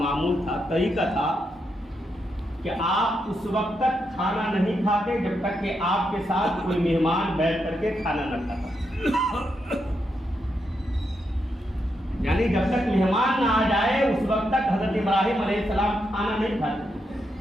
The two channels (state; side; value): normal; both; correlation 0.82